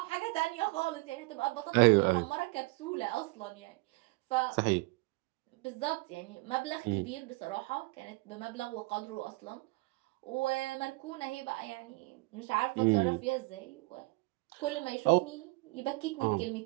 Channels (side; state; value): left; quieter; 24.9 dB